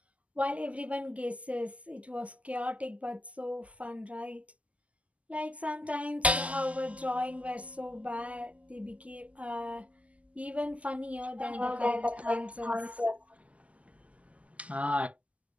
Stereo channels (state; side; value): late; left; 0.069 ms